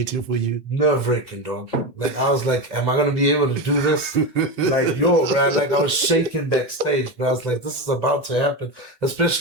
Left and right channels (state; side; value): normal; both; correlation 0.17